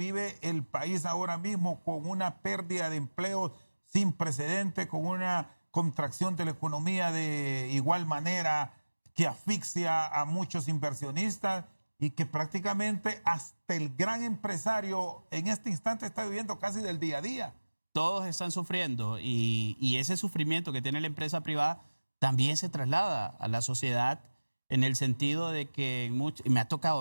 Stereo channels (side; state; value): both; inverted; correlation -1.00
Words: el país ahora mismo con una pérdida de empleo sin precedente, con una contracción de la economía de igual manera que asfixia a muchos inversionistas y que prácticamente hasta el gran empresario en este instante está viviendo casi del día a día. Todos están sufriendo y ese sufrimiento que tiene la empresa privada también se traslada a la sociedad en el sentido de que, y me ha tocado